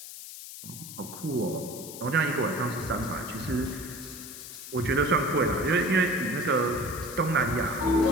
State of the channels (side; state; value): left; noise; hiss, 12 dB below the sound